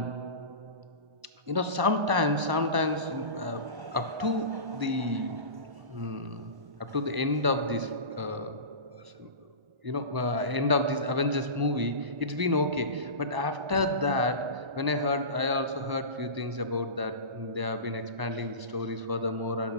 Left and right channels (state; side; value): late; left; 1.0 ms